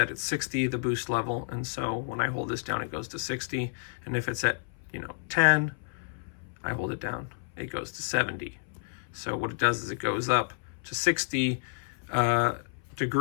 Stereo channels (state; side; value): silent; right; 58 dB below the other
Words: at 60, the boost level. And so when I hold this down, it goes to 60. And if it's at, 10, I hold it down, it goes to 70. So what it does is it goes up to 60